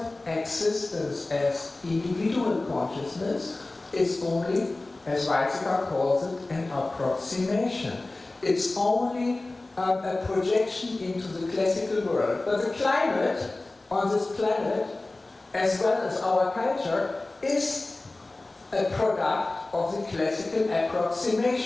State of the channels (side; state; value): right; quieter; 3.0 dB